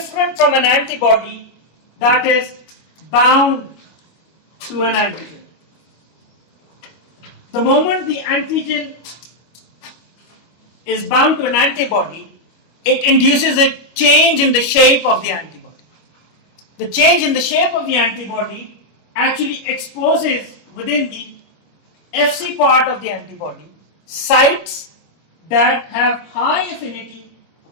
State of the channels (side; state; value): right; late; 25 ms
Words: from an antibody that is bound to an antigen. The moment the antigen is bound to an antibody, it induces a change in the shape of the antibody. The change in the shape of the antibody actually exposes within the Fc part of the antibody sites that have high affinity